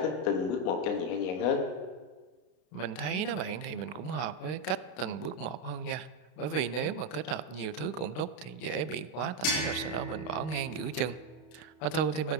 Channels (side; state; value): right; late; 32 ms